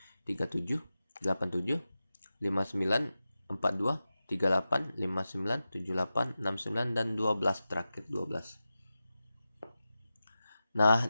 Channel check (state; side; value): inverted; both; correlation -0.93